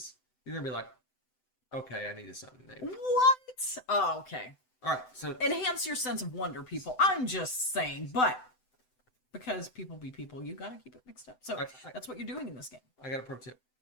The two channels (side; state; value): right; late; 7.9 ms